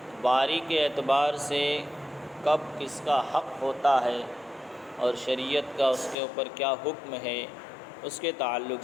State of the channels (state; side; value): drops out; right; at 6.2 s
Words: باری کے اعتبار سے کب کس کا حق ہوتا ہے اور شریعت کا اس کے اوپر کیا حکم ہے، اس کے تعلق